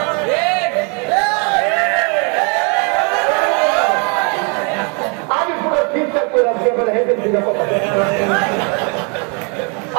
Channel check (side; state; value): left; quieter; 35.5 dB